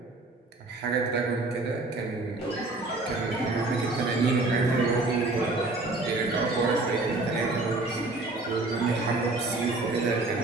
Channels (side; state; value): left; quieter; 3.1 dB